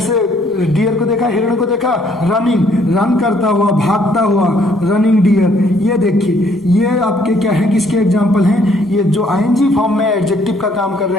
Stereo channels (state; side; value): normal; both; correlation 0.65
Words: डियर को देखा, हिरण को देखा, रनिंग, रन करता हुआ, भागता हुआ, रनिंग डियर। ये देखिए, ये आपके क्या है, किसके एग्जाम्पल हैं, ये जो आईएनजी फॉर्म में एडजेक्टिव का काम कर